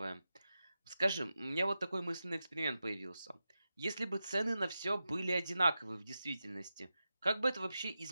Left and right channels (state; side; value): inverted; both; correlation -0.91